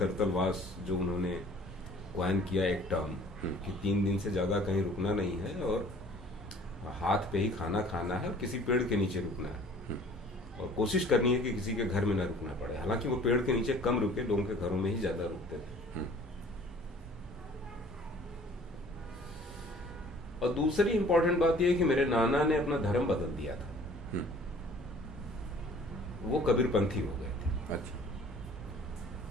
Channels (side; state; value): both; normal; correlation 0.51